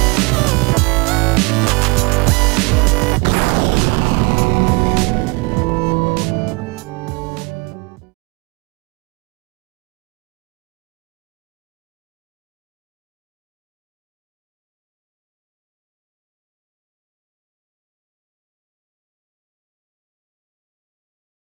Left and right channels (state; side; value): quieter; left; 27.9 dB